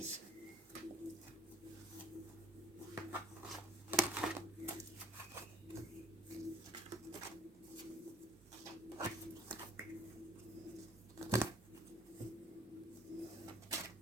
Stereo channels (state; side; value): normal; both; correlation 0.57